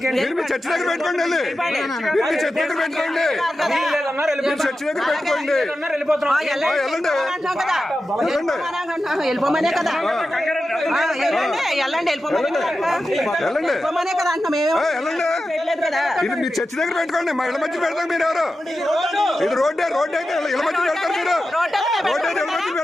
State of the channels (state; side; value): normal; both; correlation 0.92